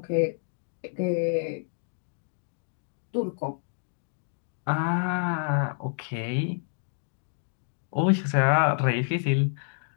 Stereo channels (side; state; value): right; silent; digital silence